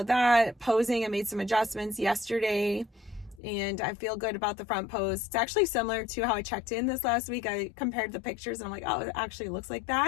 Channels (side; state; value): right; drops out; at 3.4 s